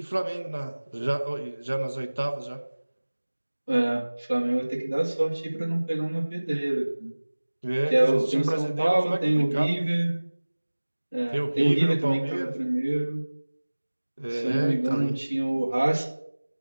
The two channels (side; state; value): both; inverted; correlation -1.00